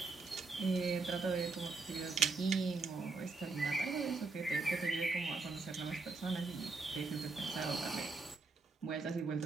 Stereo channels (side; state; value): left; quieter; 3.9 dB